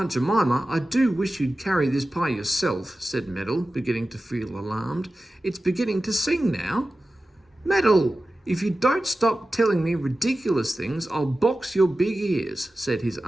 Jemima, I do wish you'd carry this pie yourself, said Meddle, beginning to feel alarmed. It's beginning to sing now. Meddle, if you don't stop telling me ridiculous things, I'll box your big ears, said his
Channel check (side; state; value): both; normal; correlation 0.95